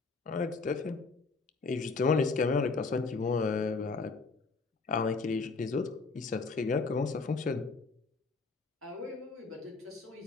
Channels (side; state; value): right; quieter; 4.2 dB